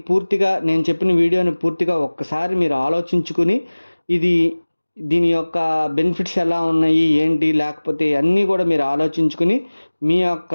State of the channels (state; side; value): inverted; both; correlation -1.00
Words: పూర్తిగా, నేను చెప్పిన వీడియోని పూర్తిగా ఒక్కసారి మీరు ఆలోచించుకుని దీని యొక్క బెనిఫిట్స్ ఎలా ఉన్నాయి ఏంటి, లేకపోతే అన్నీ కూడా మీరు ఆలోచించుకుని మీ